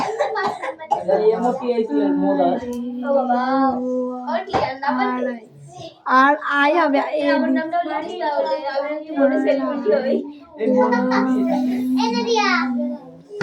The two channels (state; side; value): identical; both; correlation 1.00